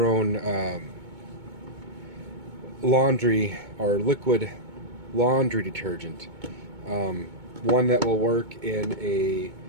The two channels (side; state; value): left; late; 2.2 ms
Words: own laundry or liquid laundry detergent. One that will work in a